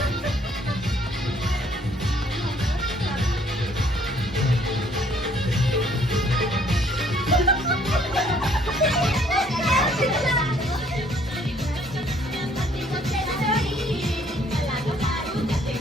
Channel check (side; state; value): both; normal; correlation 0.63